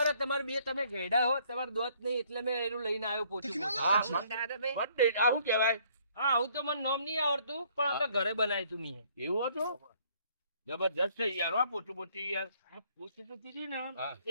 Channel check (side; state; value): both; inverted; correlation -0.62